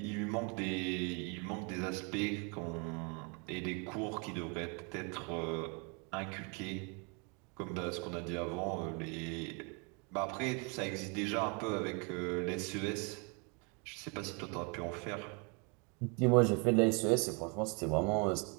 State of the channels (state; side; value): quieter; left; 33.9 dB